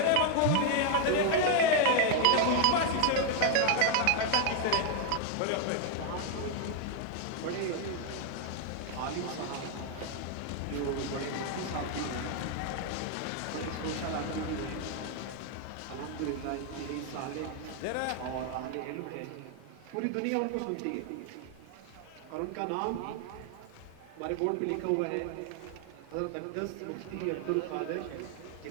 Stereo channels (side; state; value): both; different; correlation 0.00